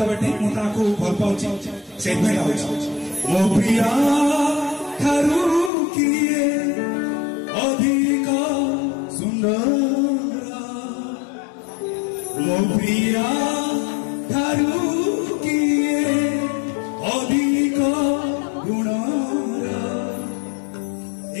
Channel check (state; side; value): drops out; right; at 5.7 s